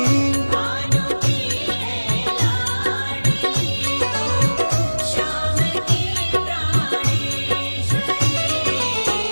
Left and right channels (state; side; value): inverted; both; correlation -1.00